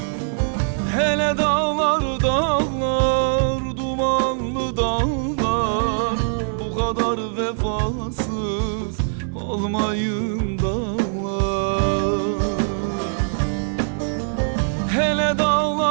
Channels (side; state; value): left; silent; digital silence